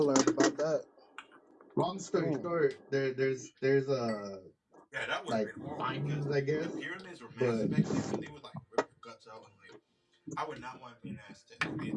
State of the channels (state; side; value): identical; both; correlation 1.00